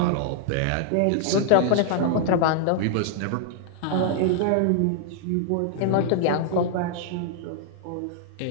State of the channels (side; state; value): both; different; correlation -0.01